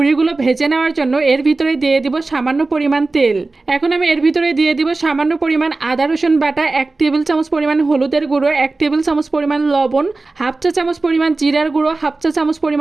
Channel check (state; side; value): quieter; left; 3.4 dB